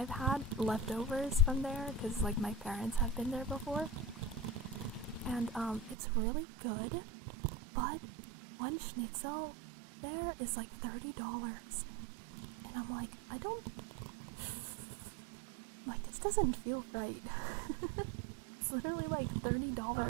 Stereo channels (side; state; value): left; drops out; at 6.0 s